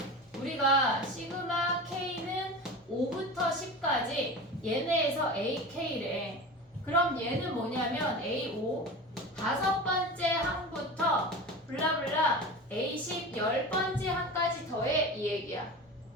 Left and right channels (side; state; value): both; normal; correlation 0.31